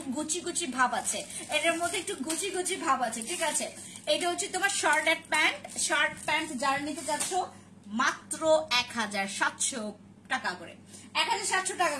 গুচি ভাব আছে, এটার মধ্যে একটু গুচি ভাব আছে, ঠিক আছে। এটা হচ্ছে তোমার শার্ট প্যান্ট যারা নিতে চাচ্ছ মাত্র 1700 টাকা করে, 1700 টাকা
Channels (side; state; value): both; identical; correlation 1.00